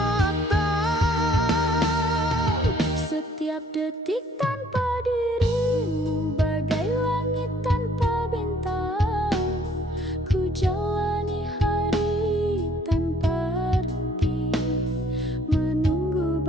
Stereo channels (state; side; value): normal; both; correlation 0.60